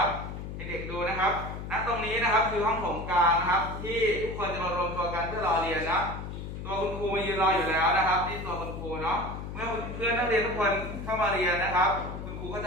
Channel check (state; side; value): noise; left; hum, 8 dB below the sound